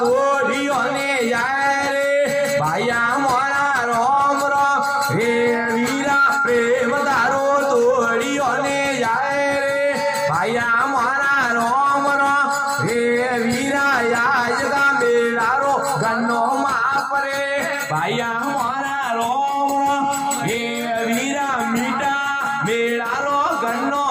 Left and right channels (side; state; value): both; identical; correlation 1.00